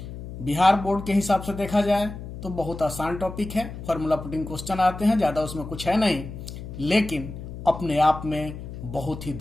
बिहार बोर्ड के हिसाब से देखा जाए तो बहुत आसान टॉपिक है। फॉर्मूला पुटिंग क्वेश्चन आते हैं, ज्यादा उसमें कुछ है नहीं, लेकिन अपने आप में बहुत ही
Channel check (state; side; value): noise; left; hum, 10 dB below the sound